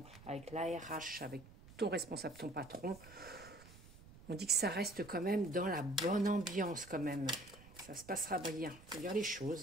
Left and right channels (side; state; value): right; noise; rumble, 20 dB below the sound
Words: avec l'ARH, avec ton responsable, ton patron. On dit que ça reste quand même dans la bonne ambiance quand même. Ça se passera bien. Il faut dire les